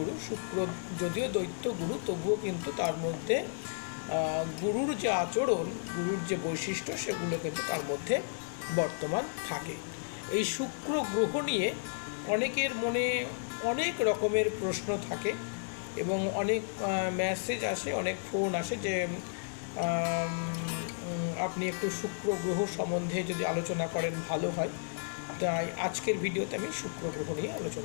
শুক্র যদিও দৈত্য গুরু, তবুও কিন্তু তার মধ্যে গুরুর যে আচরণ, গুরুর যে বৈশিষ্ট্য, সেগুলো কিন্তু তার মধ্যে বর্তমান থাকে। এই শুক্র গ্রহ নিয়ে অনেকের মনে অনেক রকমের প্রশ্ন থাকে এবং অনেক মেসেজ আসে, অনেক ফোন আসে যে আপনি একটু শুক্র গ্রহ সম্বন্ধে যদি আলোচনা করেন ভালো হয়। তাই আজকের ভিডিওতে আমি শুক্র গ্রহ নিয়ে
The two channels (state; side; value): silent; right; digital silence